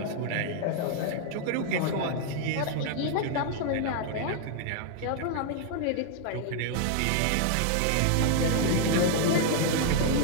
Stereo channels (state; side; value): different; both; correlation 0.00